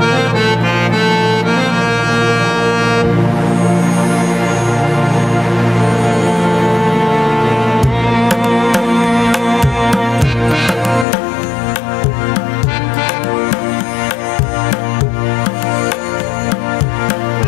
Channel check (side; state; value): right; drops out; at 11.1 s